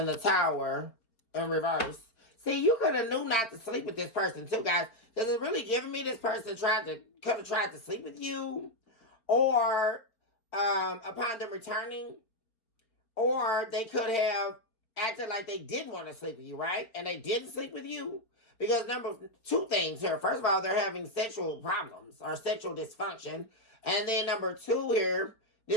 the Tower in reverse. See, you could have knew not to sleep with this person too, guys. Because it's really giving me this person could have tried to sleep with you. Or upon them returning. Or they could have acted like they did want to sleep with you, right? And they didn't sleep with you. Because two things here. First of all, they're having sexual problems or sexual dysfunction. And then number two here,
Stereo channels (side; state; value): right; late; 4.4 ms